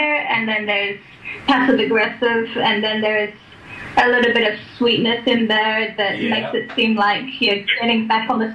and then there's passive aggressive, and then there's a little bit of sweetness in there that makes it seem like you're getting back on the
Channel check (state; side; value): identical; both; correlation 1.00